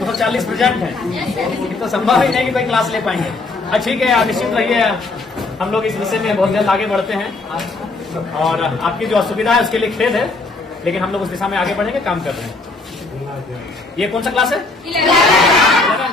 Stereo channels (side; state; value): right; quieter; 3.5 dB